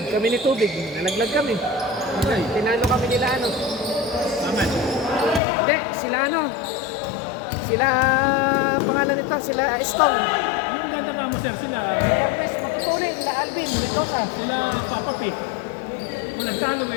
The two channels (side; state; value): right; drops out; at 5.4 s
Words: Kami ni Tubig. Nalaglag kami. Okay. Tinalo kami nila ano. Aman. Hindi, sila ano. Sila, pangalan nito, sila Stong. Yung ganda ka mo, sir, sila, Cortez, matutuloy, sila Alvin, Mendoza. sila Papa P. Walang talo